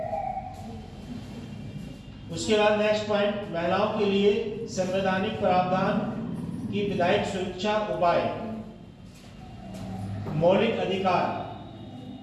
उसके बाद नेक्स्ट पॉइंट, महिलाओं के लिए संवैधानिक प्रावधान की विधायक सुरक्षा उपाय। मौलिक अधिकार,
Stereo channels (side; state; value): both; identical; correlation 1.00